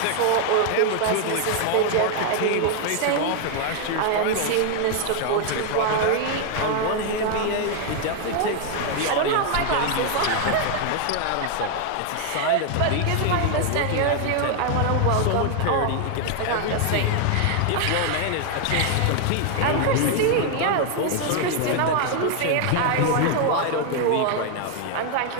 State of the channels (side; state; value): both; different; correlation 0.00